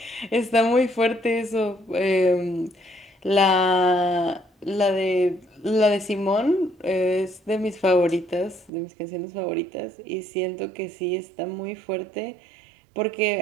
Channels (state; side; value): drops out; left; at 8.7 s